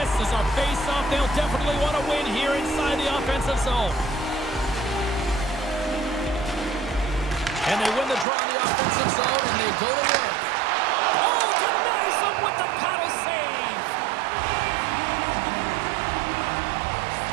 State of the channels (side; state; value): left; drops out; at 8.2 s